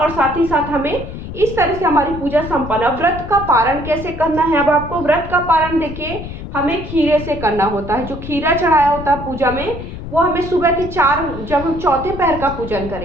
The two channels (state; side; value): noise; left; rumble, 10 dB below the sound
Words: साथ ही साथ हमें इस तरह से हमारी पूजा संपन्न। व्रत का पारण कैसे करना है, अब आपको व्रत का पारण देखिए हमें खीरे से करना होता है। जो खीरा चढ़ाया होता है पूजा में वो हमें सुबह के 4, जब हम चौथे पहर का पूजन